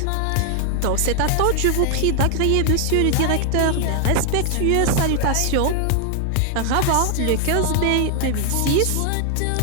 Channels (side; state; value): both; different; correlation 0.00